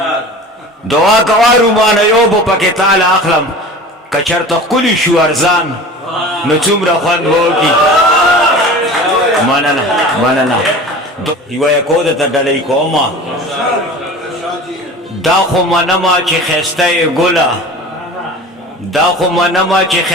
دعا کوارو مانا یو پو پاکی تال اخلم کچر تا کلی شو ارزان نو چومره خوند بوکی مننه یو یکو ده تا ڈلی کوما دا خو منما چی خسته گلا دا خو منما چی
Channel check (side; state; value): both; normal; correlation 0.38